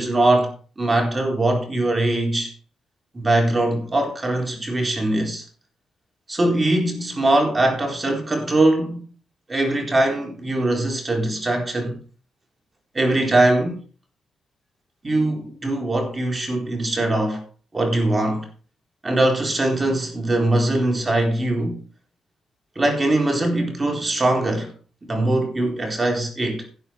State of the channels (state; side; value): normal; both; correlation 0.91